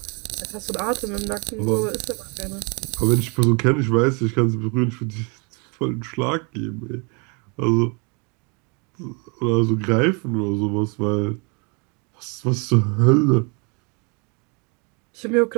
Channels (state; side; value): quieter; left; 33.1 dB